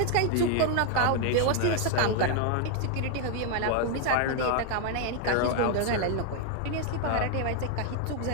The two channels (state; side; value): different; both; correlation 0.00